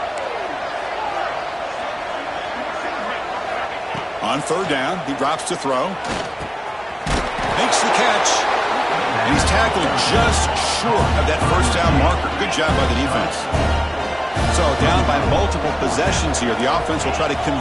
On third down, he drops to throw. Makes the catch. And he's tackled just short of that first down marker. Good job by the defense. So down by multiple possessions here. The offense will try to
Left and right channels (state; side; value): identical; both; correlation 1.00